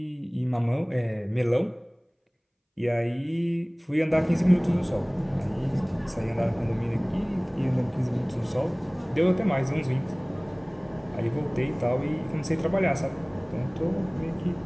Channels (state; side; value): identical; both; correlation 1.00